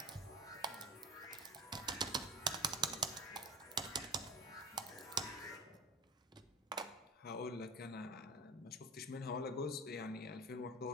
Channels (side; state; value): both; normal; correlation 0.34